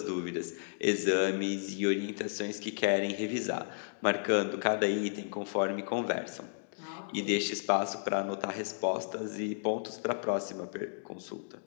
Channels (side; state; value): right; silent; digital silence